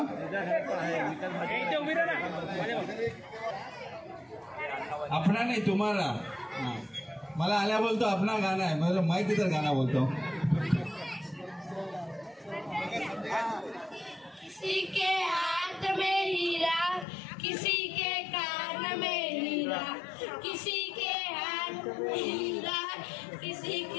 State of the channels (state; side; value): drops out; right; at 17.1 s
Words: अपना नहीं तुम्हारा. मला आल्या बोलतो अपना गाना है, मतलब माइक इधर गाना बोलतो. किसी के हाथ में हीरा, किसी के कान में हीरा, किसी के हाथ में हीरा, किसी